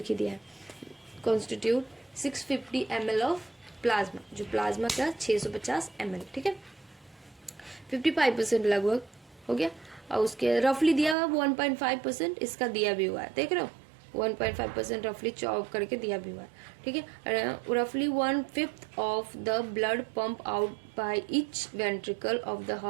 ही दिया है। कॉन्स्टिट्यूट 650 ml ऑफ प्लाज्मा, जो प्लाज्मा का 650 ml। ठीक है, 55% लगभग हो गया। और उसके रफली दिया हुआ 1.5% इसका दिया भी हुआ है, देख रहे हो 1.5% रफली चॉप करके दिया भी हुआ है। ठीक है, रफली 1/5 of the blood pump out by each ventricle of the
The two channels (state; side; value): drops out; left; at 11.2 s